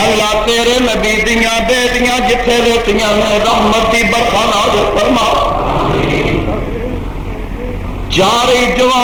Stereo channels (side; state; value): both; identical; correlation 1.00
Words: اللہ تیرے نبی دیاں بیٹیاں جتھے لیٹیاں نے رحمت دی برکھا نازل فرما۔ چارے